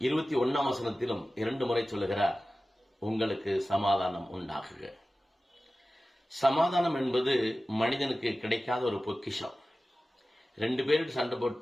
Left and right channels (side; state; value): both; normal; correlation 0.96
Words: வசனத்திலும் 2 முறை சொல்லுகிறார், உங்களுக்கு சமாதானம் உண்டாகுக. சமாதானம் என்பது மனிதனுக்கு கிடைக்காத ஒரு பொக்கிஷம். 2 பேருக்கு சண்டை